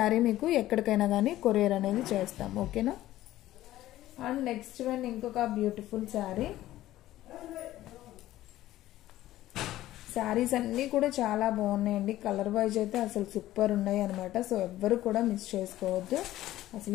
మీకు ఎక్కడికైనా కానీ కొరియర్ అనేది చేస్తాం, ఓకేనా. అండ్ నెక్స్ట్ వన్ ఇంకొక బ్యూటిఫుల్ శారీ. శారీస్ అన్నీ కూడా చాలా బాగున్నాయండి. కలర్ వైజ్ అయితే అసలు సూపర్ ఉన్నాయి అనమాట. సో ఎవ్వరు కూడా మిస్ చేసుకోవద్దు.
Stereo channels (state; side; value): quieter; right; 14.8 dB